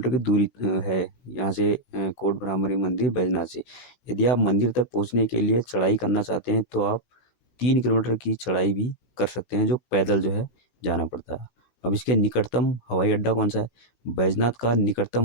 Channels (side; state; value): right; late; 16 ms